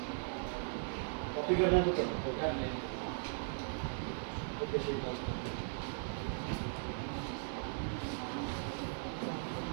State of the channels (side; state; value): left; silent; 52 dB below the other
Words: कॉपी करना है तो करो। ओके श्रीकांत।